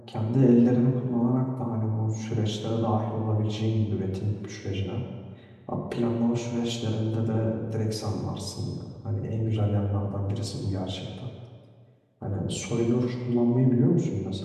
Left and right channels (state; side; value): identical; both; correlation 1.00